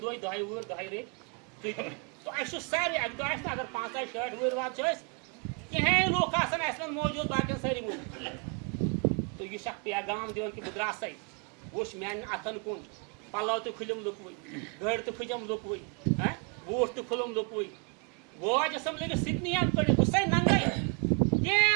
دۄہہِ دۄہے وُہٕرۍ دۄہے ریٚتۍ تُہۍ تہٕ اَسہِ چھُ سارے اَکہِ دۄہ آسہِ نہٕ اگر 5-6 وُہٕرۍ واد چھِ أسۍ کِہینۍ لُکھ آسان اَسہِ منٛز موٗجوٗد باقین سٲری موٗجوٗد تہٕ یہِ چھُ اکھ پیغام دِوان کہِ بہٕ درٛاسَے وٕچھ میانٮ۪ن اَتھن کُن پَلو تہِ کھُلِم لُکوٕے گٔرۍ تہِ کھٔجم لُکوٕے بوٗٹھ تہِ کھُلُم لُکوٕے واج ٲسٕم لٔگِتھ سِکنِیَن کٔڑِتھ بہٕ چھُسَے ننٛگَے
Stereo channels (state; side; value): quieter; left; 35.7 dB